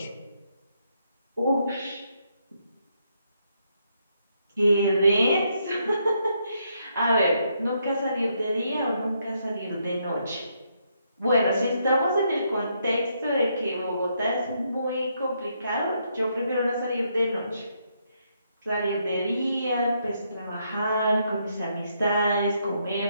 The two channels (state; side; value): inverted; both; correlation -0.76